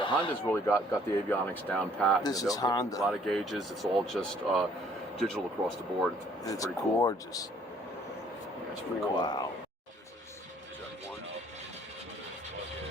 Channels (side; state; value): both; normal; correlation 0.60